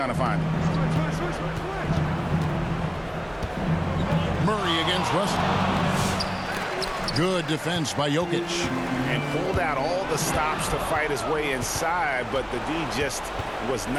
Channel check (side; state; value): both; identical; correlation 1.00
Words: to find him. Murray against Russell. Good defense by Jokic. And pulled out all the stops to fight his way inside, but the D just was